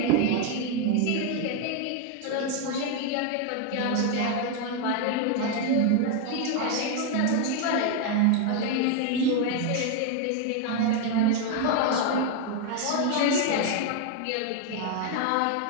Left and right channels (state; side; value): different; both; correlation 0.01